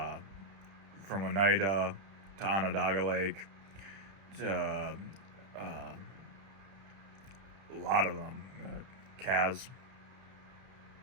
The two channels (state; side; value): late; left; 31 ms